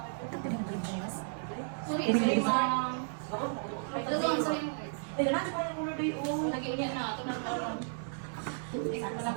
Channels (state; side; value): silent; left; digital silence